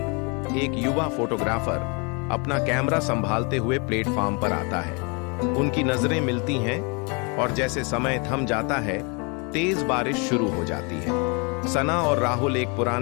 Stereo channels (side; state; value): right; quieter; 32.4 dB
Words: एक युवा फोटोग्राफर, अपना कैमरा संभालते हुए प्लेटफार्म पर आता है। उनकी नजरें मिलती हैं और जैसे समय थम जाता है, तेज बारिश शुरू हो जाती है। सना और राहुल एक